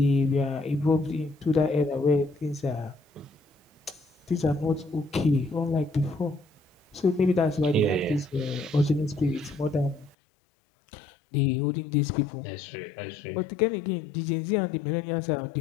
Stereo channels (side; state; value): right; drops out; at 10.2 s